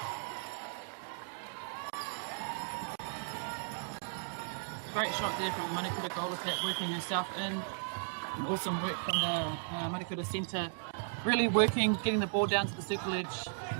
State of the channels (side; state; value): left; silent; digital silence